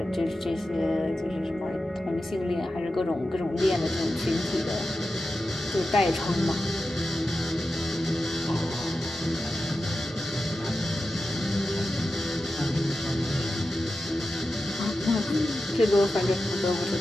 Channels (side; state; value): both; normal; correlation 0.91